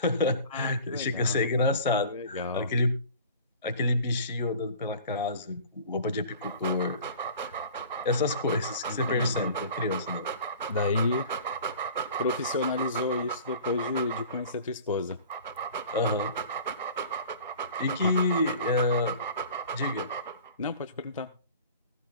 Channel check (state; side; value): inverted; both; correlation -0.43